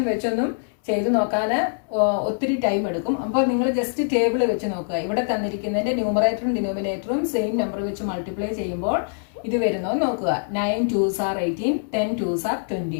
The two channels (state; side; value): silent; right; 63 dB below the other